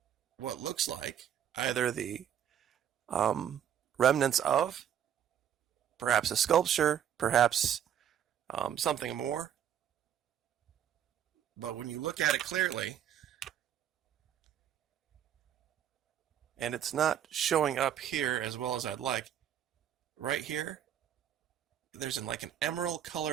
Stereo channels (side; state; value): left; quieter; 9.7 dB